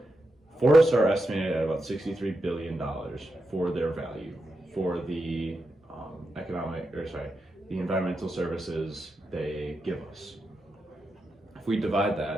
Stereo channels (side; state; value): both; normal; correlation 0.87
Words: forests are estimated at about $63 billion for their value, for the the environmental services they give us. If we divide